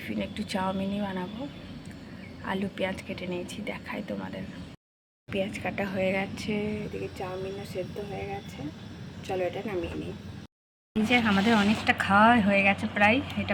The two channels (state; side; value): identical; both; correlation 1.00